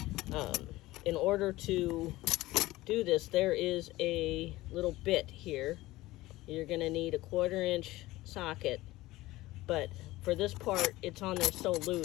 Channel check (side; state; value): right; quieter; 18.2 dB